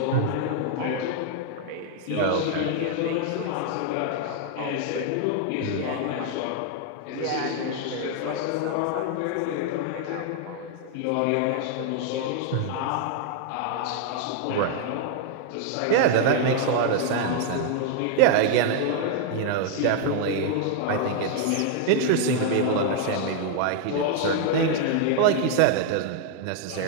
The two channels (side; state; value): both; different; correlation 0.00